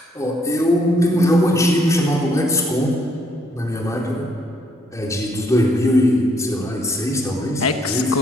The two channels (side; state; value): both; normal; correlation 0.71